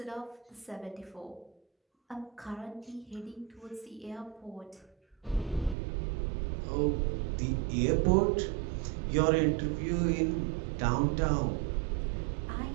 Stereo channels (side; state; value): left; drops out; at 5.8 s